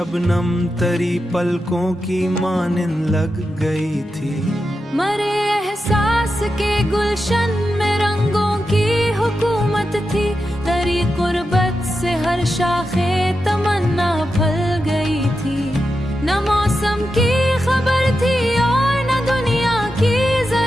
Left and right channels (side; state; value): both; normal; correlation 0.89